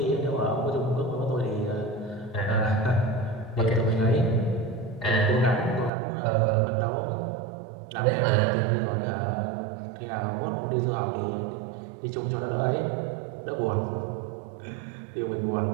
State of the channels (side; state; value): left; drops out; at 5.9 s